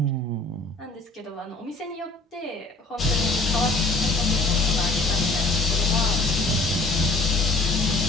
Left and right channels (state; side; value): quieter; right; 3.0 dB